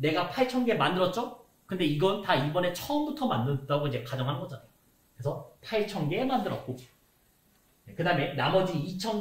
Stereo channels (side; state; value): both; identical; correlation 1.00